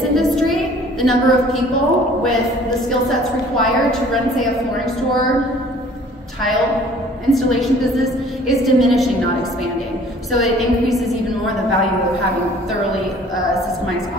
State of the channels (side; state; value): both; normal; correlation 0.52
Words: industry, the number of people with the skill sets required to run, say, a flooring store, tile installation business is diminishing, not expanding. So it increases even more the value of having thoroughly systemized